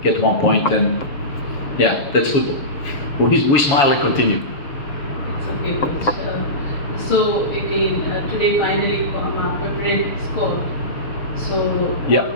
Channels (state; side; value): late; right; 6.7 ms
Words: get 1 point, and yeah, that's football. We smile and continue. It's okay, Coach. So again, today finally Pepper scored. So yeah.